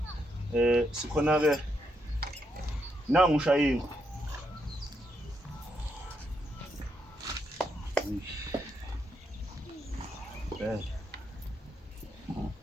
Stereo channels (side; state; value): both; normal; correlation 0.79